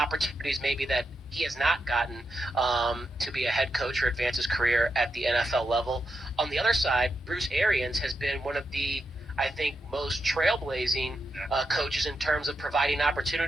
maybe that he has not gotten to be a head coach or advance his career at the NFL level. On the other side, Bruce Arians has been one of the, I think, most trailblazing coaches in terms of providing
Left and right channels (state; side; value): normal; both; correlation 0.86